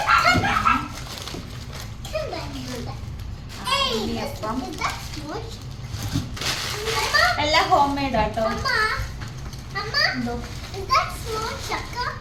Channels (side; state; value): both; identical; correlation 1.00